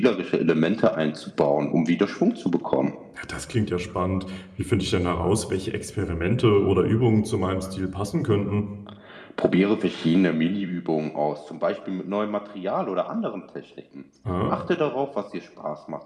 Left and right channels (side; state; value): both; identical; correlation 1.00